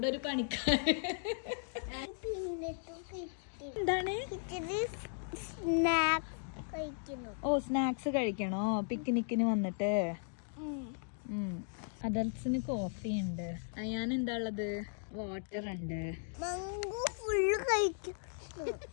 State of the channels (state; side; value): silent; right; digital silence